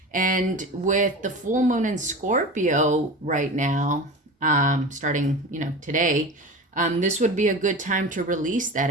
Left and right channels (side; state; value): both; normal; correlation 0.31